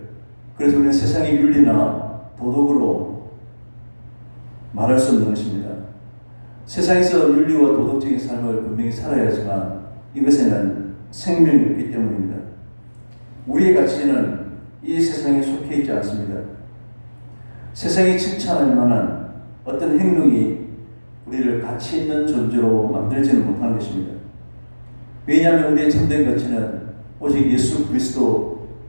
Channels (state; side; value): inverted; both; correlation -1.00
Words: 그래서 우리는 세상의 윤리나 도덕으로 말할 수 없는 것입니다. 세상에서 윤리와 도덕적인 삶을 분명히 살아야 하지만 이것에는 생명이 없기 때문입니다. 우리의 가치는 이 세상에 속해 있지 않습니다. 세상이 칭찬할 만한 어떤 행동이 우리를 가치 있는 존재로 만들지는 못하는 것입니다. 왜냐하면 우리의 참된 가치는 오직 예수